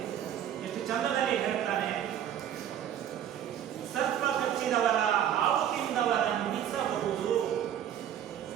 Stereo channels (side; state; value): left; quieter; 10.2 dB